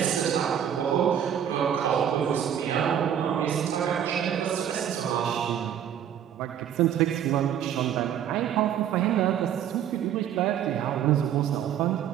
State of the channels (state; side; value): quieter; left; 9.6 dB